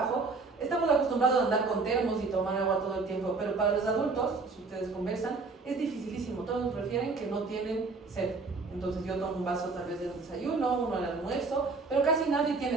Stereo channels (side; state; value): left; quieter; 4.0 dB